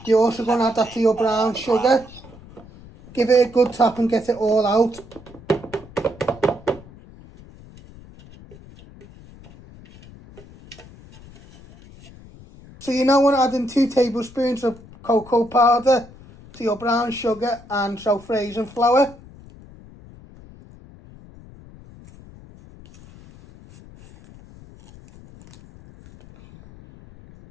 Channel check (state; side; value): noise; left; rumble, 21 dB below the sound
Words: you're also going to add that to your brown sugar. Give it a good tap and get it all out. So you now want to add in 2 tablespoons of cocoa powder to your brown sugar and self-raising flour.